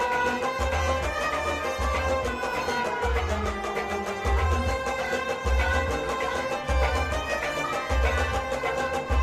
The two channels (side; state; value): both; identical; correlation 1.00